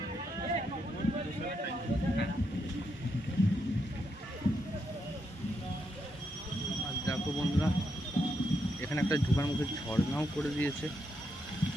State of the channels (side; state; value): both; normal; correlation 0.81